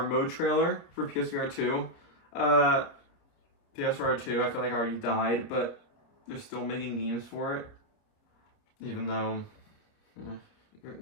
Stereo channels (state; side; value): late; right; 29 ms